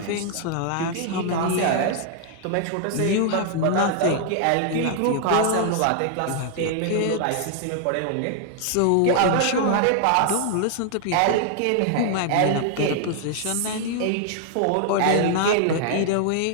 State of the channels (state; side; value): different; both; correlation 0.00